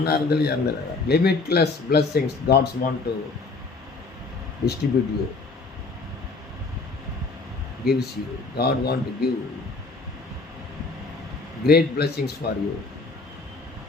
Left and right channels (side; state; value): right; quieter; 3.8 dB